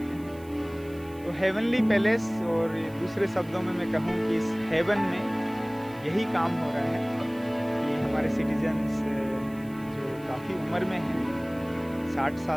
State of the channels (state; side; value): noise; right; hiss, 25 dB below the sound